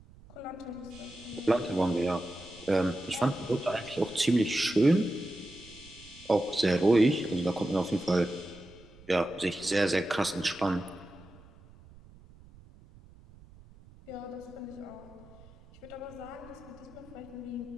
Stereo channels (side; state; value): right; noise; rumble, 23 dB below the sound